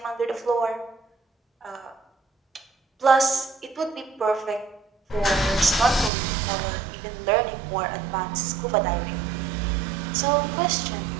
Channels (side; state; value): left; drops out; at 6.1 s